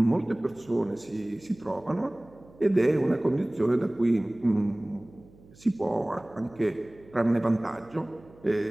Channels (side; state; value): right; noise; hum, 25 dB below the sound